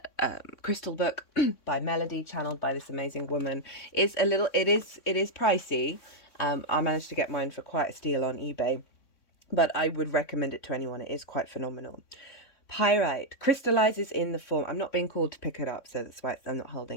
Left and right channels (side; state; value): right; late; 3.6 ms